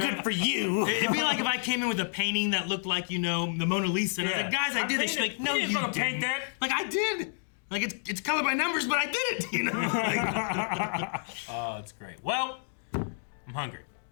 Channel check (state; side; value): silent; right; digital silence